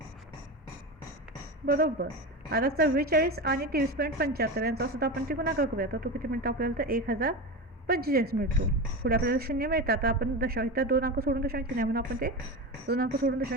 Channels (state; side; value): normal; both; correlation 0.22